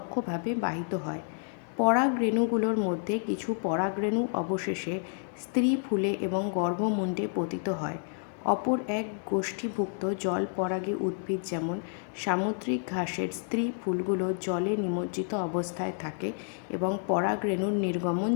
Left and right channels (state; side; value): silent; right; 56 dB below the other